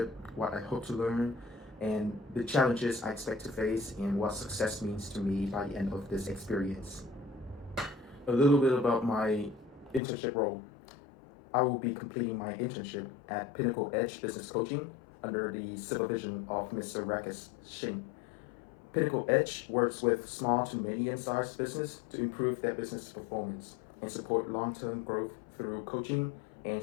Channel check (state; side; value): drops out; right; at 10.0 s